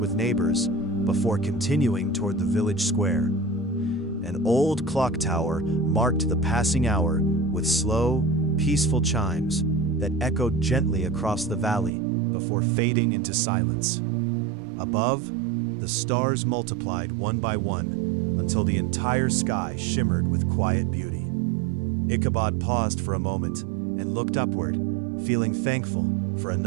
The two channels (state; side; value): drops out; left; at 11.9 s